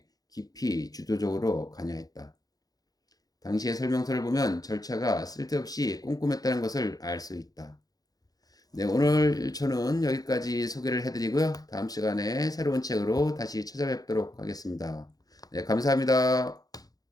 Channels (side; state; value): right; late; 0.18 ms